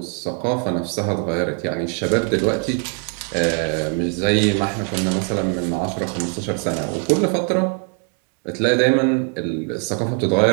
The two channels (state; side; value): quieter; left; 39.7 dB